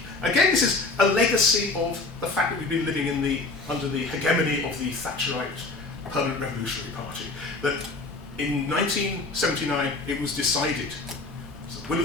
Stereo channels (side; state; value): right; quieter; 3.5 dB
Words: Again, this is a legacy of the fact that we've been living under the hegemony of the Thatcherite Permanent Revolutionary Party. That in 1979 it was decided, it's the will